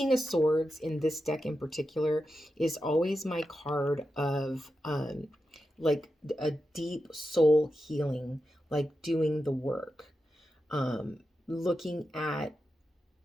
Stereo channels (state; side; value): normal; both; correlation 0.89